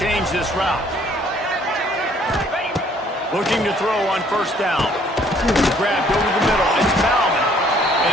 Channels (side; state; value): both; normal; correlation 0.61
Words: this route. Looking to throw on first down. Grabbed over the middle. It's Bauman. And